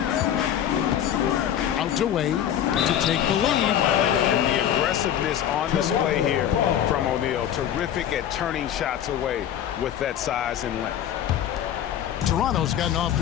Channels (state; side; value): quieter; right; 10.3 dB